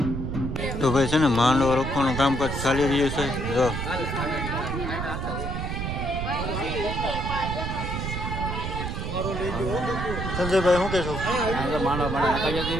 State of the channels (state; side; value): noise; right; rumble, 3 dB below the sound